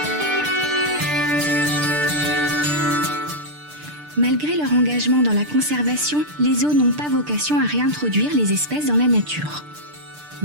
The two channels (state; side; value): late; left; 6.7 ms